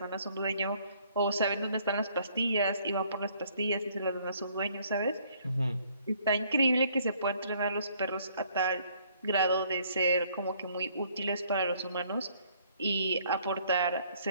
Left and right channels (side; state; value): both; inverted; correlation -0.63